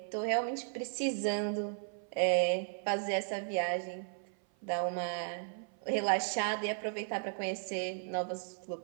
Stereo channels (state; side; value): silent; left; 54 dB below the other